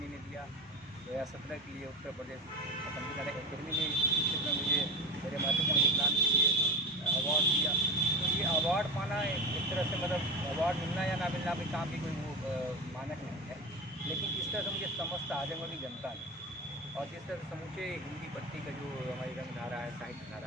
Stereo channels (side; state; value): both; normal; correlation 0.25